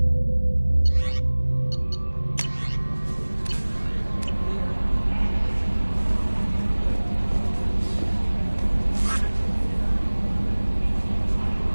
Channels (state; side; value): inverted; both; correlation -1.00